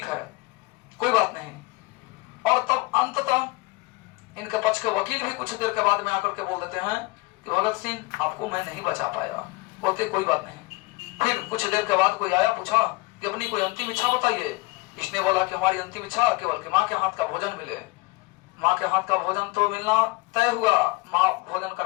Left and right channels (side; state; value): right; quieter; 23.1 dB